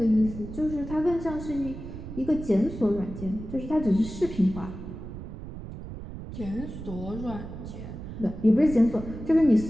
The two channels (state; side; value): noise; right; rumble, 10 dB below the sound